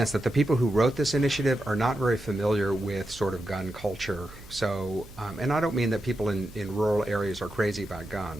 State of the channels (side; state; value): right; noise; hum, 19 dB below the sound